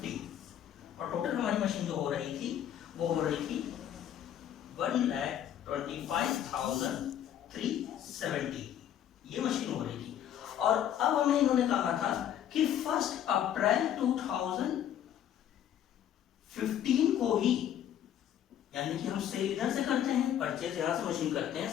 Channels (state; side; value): quieter; right; 10.5 dB